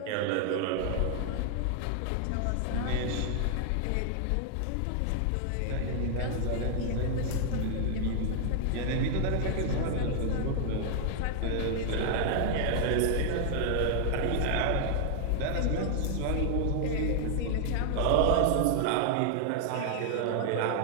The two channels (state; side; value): different; both; correlation 0.00